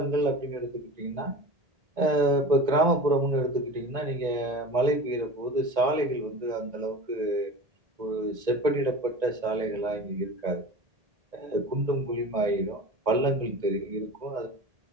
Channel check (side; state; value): left; late; 1.9 ms